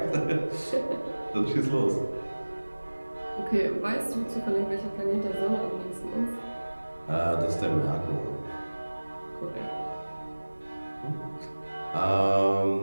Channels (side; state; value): both; inverted; correlation -1.00